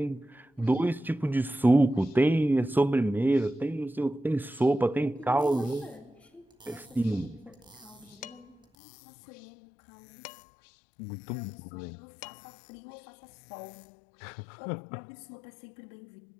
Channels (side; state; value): right; drops out; at 8.6 s